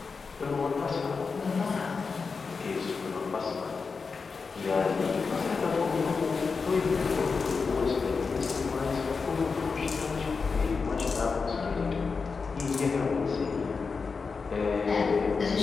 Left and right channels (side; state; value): right; quieter; 4.9 dB